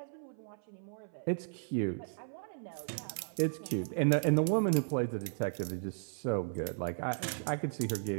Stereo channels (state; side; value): silent; left; 54 dB below the other